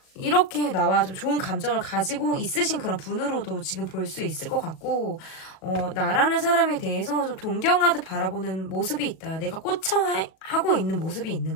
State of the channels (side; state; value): right; late; 37 ms